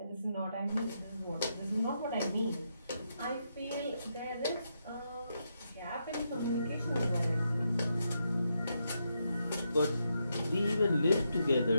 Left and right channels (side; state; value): both; inverted; correlation -0.82